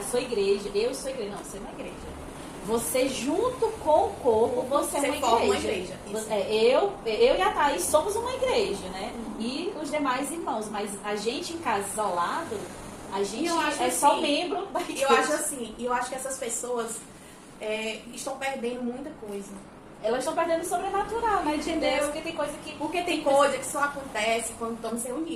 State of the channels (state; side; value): identical; both; correlation 1.00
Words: sou igreja. Eu sou igreja. Não, você não é igreja. Você junto com o corpo, você é uma igreja. Eu e a Thaís somos uma igreja, né? E os demais irmãos. Mas a gente em casa isolado, a gente só membro da igreja. Eu acho que essas pessoas estão perdendo muita coisa. Elas estão perdendo o sobrenatural, né? Entendeu? Porque tem coisa que só acontece quando estamos